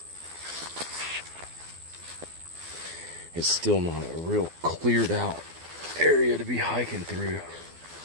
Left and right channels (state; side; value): late; left; 12 ms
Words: it's still not a real cleared out area to be hiking through.